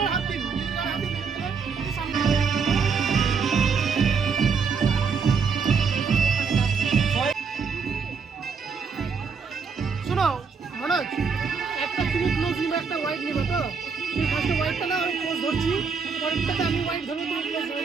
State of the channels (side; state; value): left; quieter; 5.6 dB